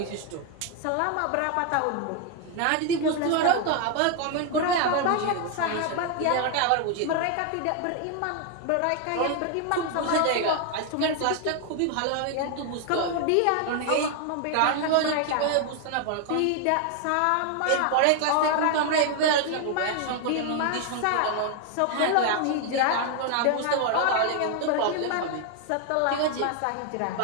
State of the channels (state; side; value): different; both; correlation 0.00